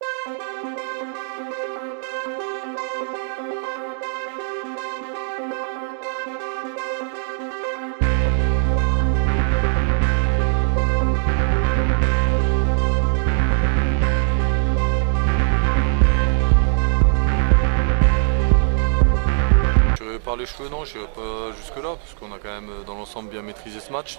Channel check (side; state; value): left; silent; 65 dB below the other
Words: Par les cheveux, non, je n'irai pas jusque-là, parce qu'on a quand même dans l'ensemble bien maîtrisé ce match.